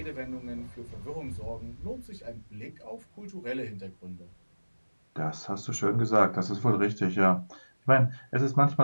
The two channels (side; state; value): both; inverted; correlation -1.00